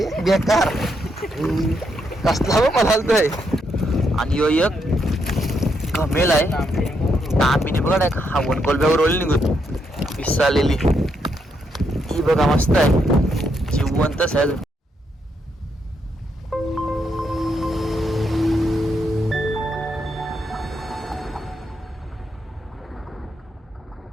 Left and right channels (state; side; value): normal; both; correlation 0.78